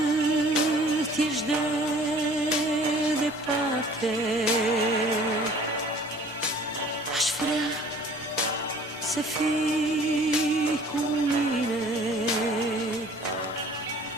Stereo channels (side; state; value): right; noise; rumble, 29 dB below the sound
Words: ești de departe, aș vrea să fii cu mine